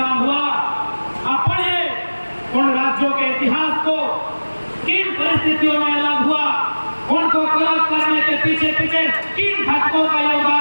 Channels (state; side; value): inverted; both; correlation -1.00